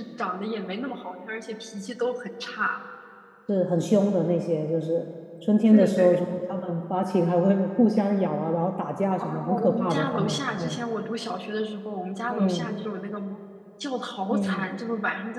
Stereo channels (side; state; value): both; identical; correlation 1.00